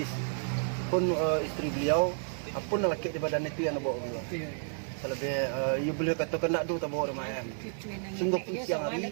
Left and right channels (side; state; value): left; silent; digital silence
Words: Pun istri beliau, apun laki di badan itu yang bawa beliau. Selebih, ya beliau kata kena do tak bawa rumah ayam. Sungguh pun siang hari,